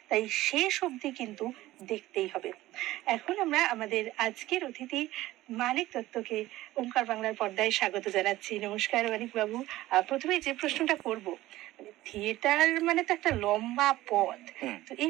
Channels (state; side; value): quieter; left; 16.5 dB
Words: তাই শেষ অবধি কিন্তু দেখতেই হবে। এখন আমরা আমাদের আজকের অতিথি মানিক দত্তকে ওঙ্কার বাংলার পর্দায় স্বাগত জানাচ্ছি। নমস্কার মানিক বাবু। প্রথমে যে প্রশ্নটা করব, মানে থিয়েটার মানে তো একটা লম্বা পথ। তো